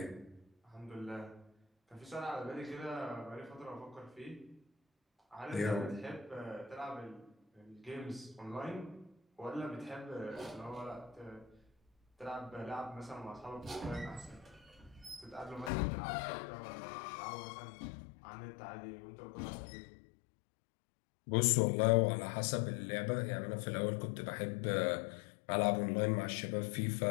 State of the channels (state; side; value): drops out; right; at 15.7 s